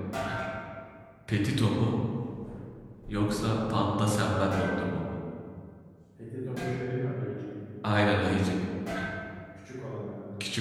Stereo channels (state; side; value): identical; both; correlation 1.00